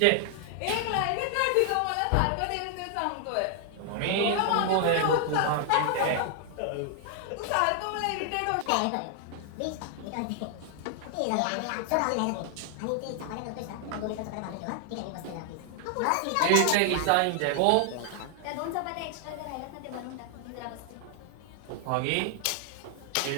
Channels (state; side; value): different; both; correlation 0.00